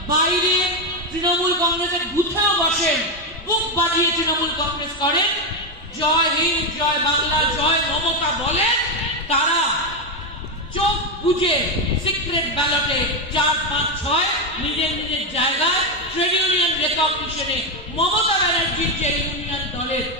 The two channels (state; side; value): normal; both; correlation 0.07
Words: বাইরে তৃণমূল কংগ্রেসের বুথেও বসেন, বুক বাজিয়ে তৃণমূল কংগ্রেস করেন, জয় হিন্দ, জয় বাংলা, জয় মমতা বলেন, তারা চোখ বুঝে সিক্রেট ব্যালটে 4, 5, 6 নিজের নিজের জায়গায় ট্রেড ইউনিয়ন রেকগনিশনে মমতা ব্যানার্জির যে ইউনিয়ন দলের